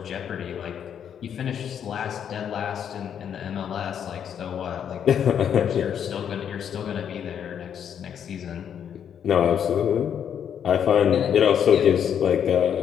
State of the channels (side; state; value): right; quieter; 8.6 dB